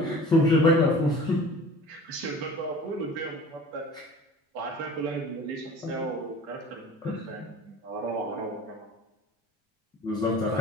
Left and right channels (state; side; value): normal; both; correlation 0.43